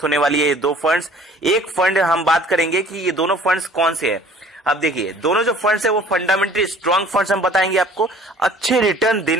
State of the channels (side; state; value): both; normal; correlation 0.52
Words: होने वाली है ये दो फंड्स। एक फंड हम बात करेंगे कि ये दोनों फंड्स कौन से हैं। अब देखिए दोनों जो फंड्स है वो फंडामेंटली स्ट्रांग फंड्स हम बताएंगे, आपको अच्छे रिटर्न